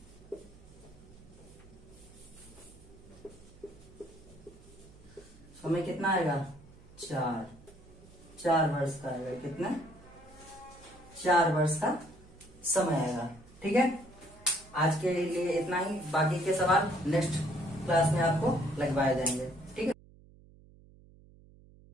कितना आएगा 4 वर्ष का आएगा। कितना 4 वर्ष का समय आएगा। ठीक है, आज के लिए इतना ही, बाकी के सवाल नेक्स्ट क्लास में आपको लगवाए जाएंगे। ठीक है,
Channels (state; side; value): noise; right; hum, 23 dB below the sound